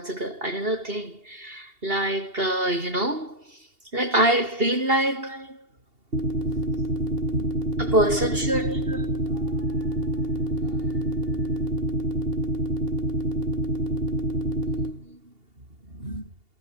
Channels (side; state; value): left; late; 2.8 ms